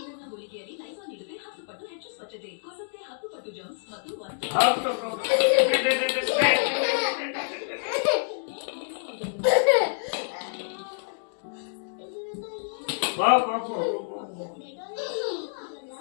ಗುಳಿಗೆಯಲ್ಲಿ ಲೈಸಾಲ್ ನೀಡಿದ್ರೆ 10 ಪಟ್ಟು ಹೆಚ್ಚು ಸ್ವಚ್ಛತೆ ಕೊಲ್ಲುತ್ತೆ, 10 ಪಟ್ಟು ಜರ್ಮ್ಸ್ ಮತ್ತು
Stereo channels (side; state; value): right; silent; digital silence